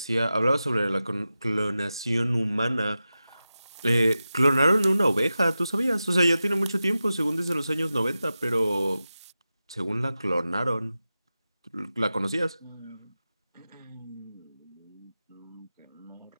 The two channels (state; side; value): inverted; both; correlation -0.93